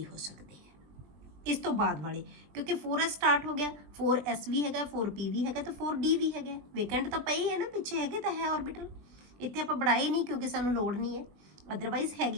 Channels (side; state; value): left; late; 20 ms